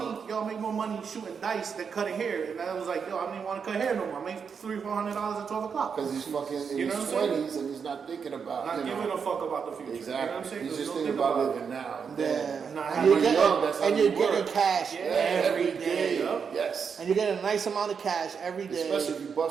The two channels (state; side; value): quieter; left; 6.3 dB